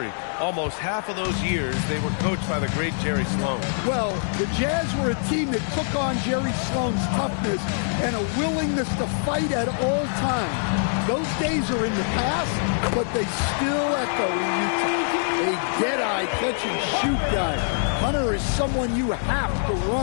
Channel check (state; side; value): silent; right; digital silence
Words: almost half of those years they were coached by the great Jerry Sloan. Well, the Jazz were a team that took on Jerry Sloan's toughness and a willingness to fight at all times. Those days are in the past, but they still echo in Utah. A dead-eye catch-and-shoot guy. Hunter is someone you have to